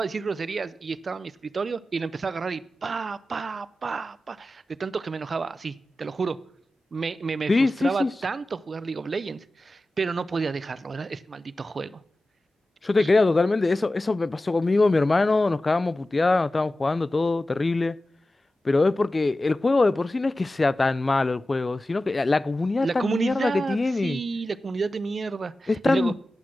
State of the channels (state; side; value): normal; both; correlation 0.94